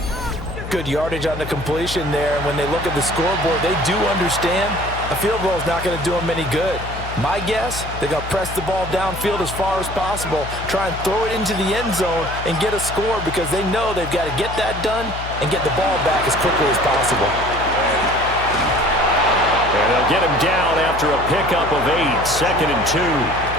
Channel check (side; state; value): left; noise; hum, 9 dB below the sound